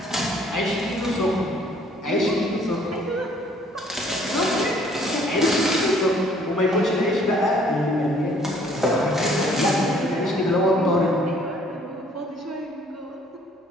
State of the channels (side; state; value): both; normal; correlation 0.60